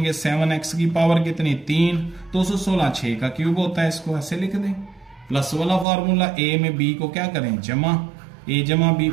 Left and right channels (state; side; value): drops out; left; at 5.9 s